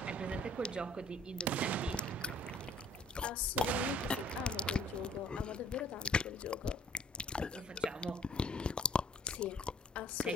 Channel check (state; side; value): normal; both; correlation 0.55